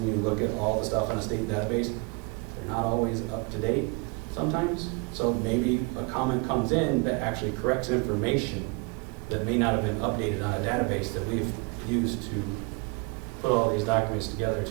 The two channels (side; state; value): left; quieter; 30.4 dB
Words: you look at all the stuff in a state database, they're not always up to date sometimes. So maybe a comment comes in that actually corrects information that may not have been updated on a database that we've used to put all these documents together